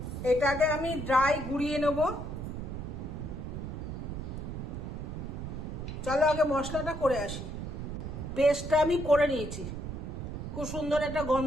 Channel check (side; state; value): right; noise; rumble, 6 dB below the sound